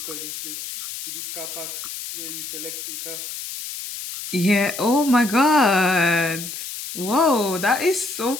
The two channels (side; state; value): left; noise; hiss, 8 dB below the sound